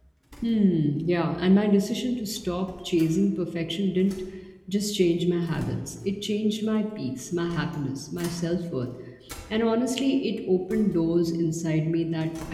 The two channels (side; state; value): both; identical; correlation 1.00